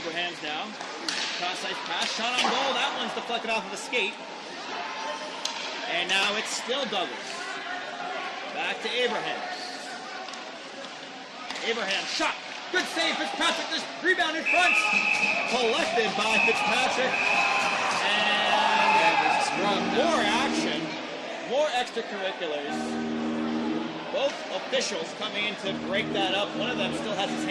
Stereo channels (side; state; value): both; identical; correlation 1.00